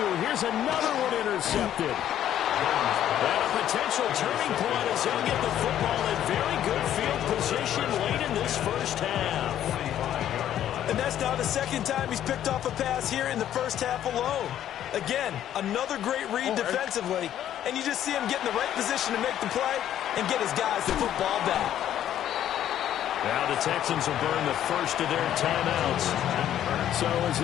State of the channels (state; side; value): quieter; right; 11.2 dB